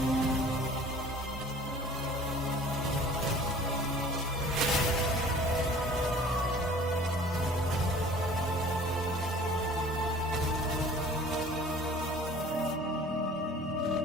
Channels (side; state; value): both; normal; correlation 0.47